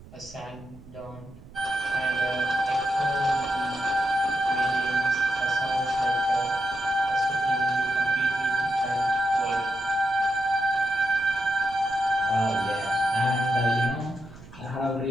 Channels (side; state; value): right; noise; rumble, 20 dB below the sound